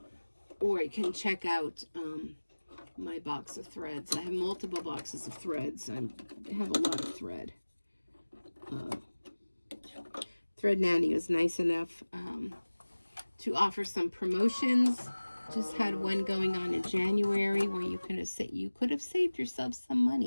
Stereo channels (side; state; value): both; inverted; correlation -1.00